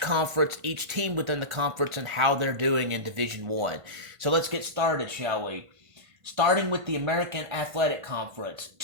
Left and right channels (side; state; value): left; late; 1.5 ms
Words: each team within the conference, and how they're doing in Division One. So let's get started, shall we? Starting with the American Athletic Conference,